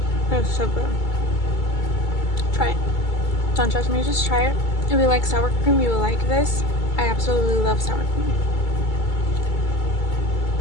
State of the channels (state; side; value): late; right; 2.3 ms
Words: It's so good. Try it. Don't judge me, just try it. If you like sour cream, you will like this. I absolutely love sour cream.